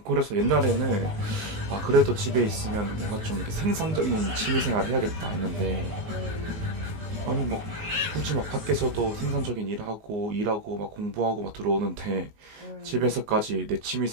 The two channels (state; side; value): late; left; 19 ms